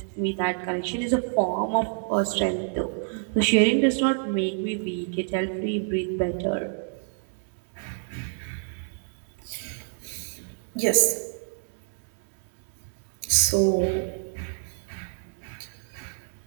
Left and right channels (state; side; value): silent; left; digital silence